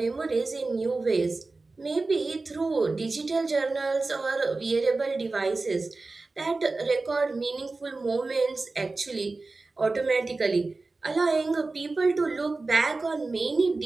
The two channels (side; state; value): left; quieter; 3.5 dB